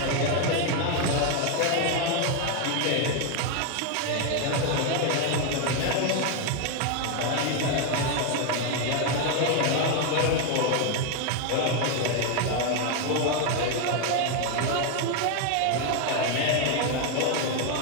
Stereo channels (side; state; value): both; different; correlation 0.01